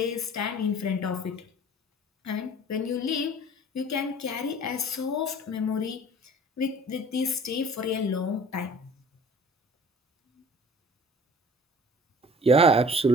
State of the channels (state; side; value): normal; both; correlation 0.48